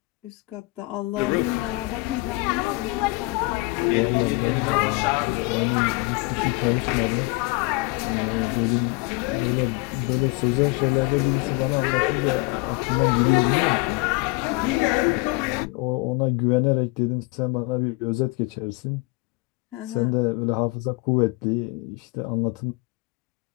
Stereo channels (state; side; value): quieter; right; 25.3 dB